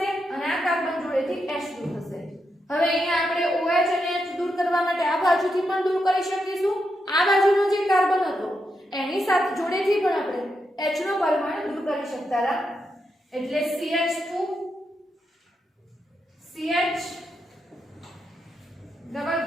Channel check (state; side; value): normal; both; correlation 0.84